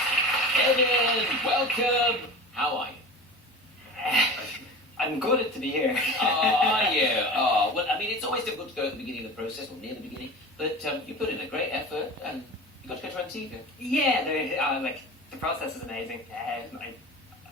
Kevin, welcome. How are you? I'm good to be here. Are you? Oh, well, I mean, it's always difficult to go at the beginning of the process, or near the beginning, but you put in a great effort, and you got to go to TV. Yeah, like the process is amazing.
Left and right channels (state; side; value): normal; both; correlation 0.34